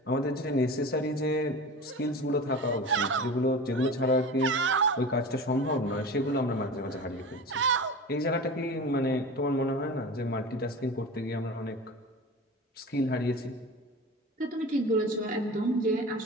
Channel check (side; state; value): both; normal; correlation 0.32